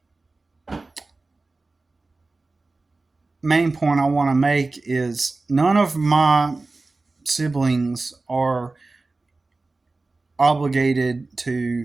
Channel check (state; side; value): quieter; left; 3.4 dB